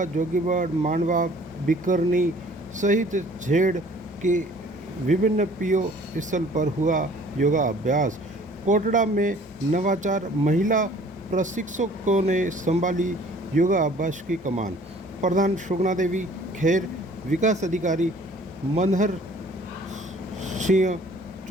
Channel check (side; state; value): both; normal; correlation 0.53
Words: जोगीबाड़, मांडवा, बिकरनी सहित झेड़ के विभिन्न पीओ स्थल पर हुआ योगा अभ्यास। कोटड़ा में नवाचार महिला प्रशिक्षकों ने संभाली योगा अभ्यास की कमान। प्रधान सुगना देवी खेर, विकास अधिकारी मनहर सिंह